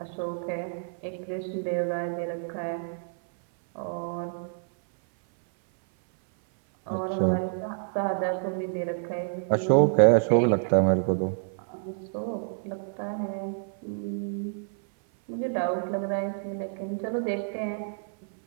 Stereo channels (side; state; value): left; silent; 57 dB below the other